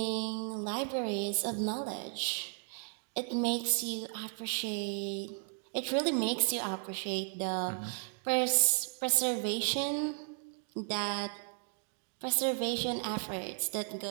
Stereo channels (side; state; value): left; silent; 55 dB below the other